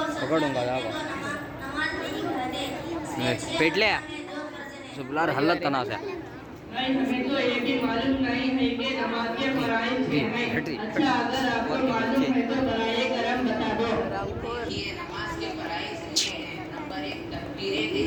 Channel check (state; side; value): identical; both; correlation 1.00